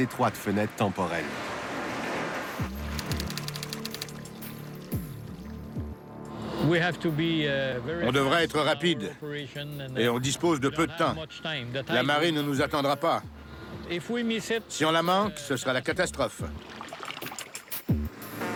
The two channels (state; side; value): identical; both; correlation 1.00